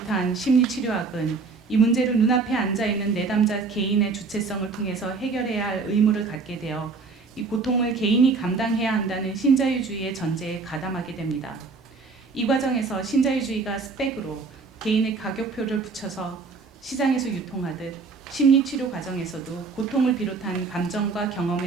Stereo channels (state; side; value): quieter; left; 4.4 dB